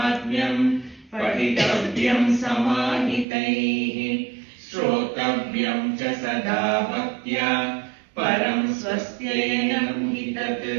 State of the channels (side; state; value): left; drops out; at 3.2 s